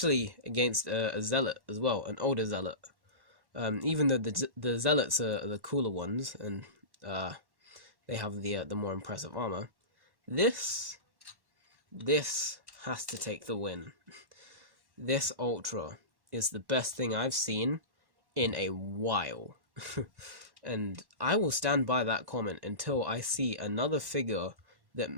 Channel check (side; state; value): left; late; 1.1 ms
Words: against a zealot as well, an older zealot. Even though the zealots are the cooler ones, and they have the more impressive armor, this has to take the win. This Ultra is the best thing I've seen in a while, and I will stand by that comment until I see another figure that